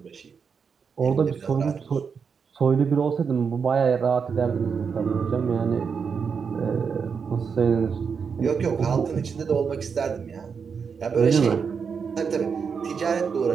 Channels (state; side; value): quieter; left; 6.1 dB